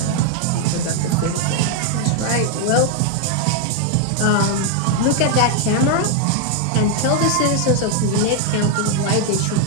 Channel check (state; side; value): different; both; correlation 0.00